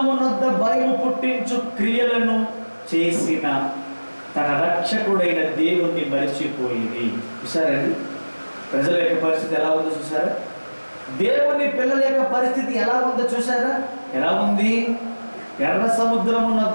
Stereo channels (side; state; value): both; inverted; correlation -1.00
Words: నొద్ద భయము పుట్టించు క్రియలను చేసిన తన రక్షకుడైన దేవుణ్ణి మరిచిపోయింది. చూసారండి ప్రజల యొక్క పరిస్థితి ఎలా ఉందో చూసారా? దేవుని పిల్లల యొక్క పరిస్థితి ఎలా ఉందో చూసారా? ఎలా ఉంది? ఎర్ర సముద్రము